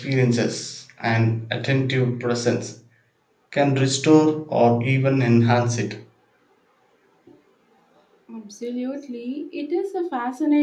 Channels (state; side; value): identical; both; correlation 1.00